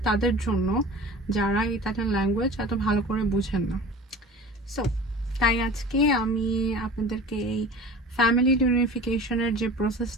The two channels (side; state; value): both; normal; correlation 0.39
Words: তাদের জন্য যারা ইতালিয়ান ল্যাঙ্গুয়েজ এত ভালো করে বুঝেন না। সো তাই আজকে আমি আপনাদেরকে এই ফ্যামিলি রিউনিফিকেশনের যে